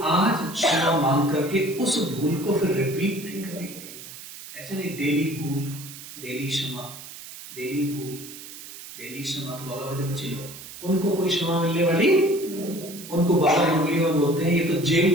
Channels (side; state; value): right; noise; hiss, 14 dB below the sound